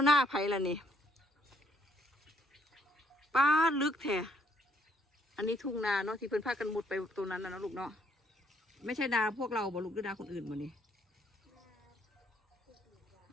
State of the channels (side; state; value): both; normal; correlation 0.69